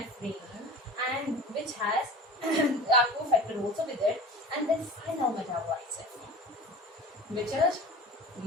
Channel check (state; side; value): normal; both; correlation 0.37